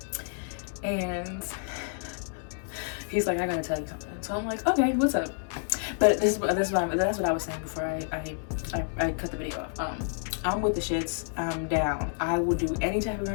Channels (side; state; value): right; silent; digital silence